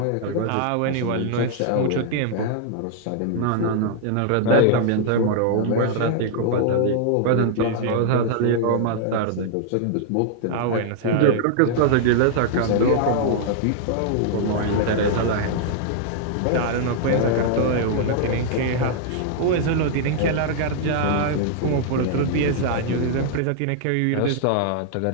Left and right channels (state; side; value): different; both; correlation -0.01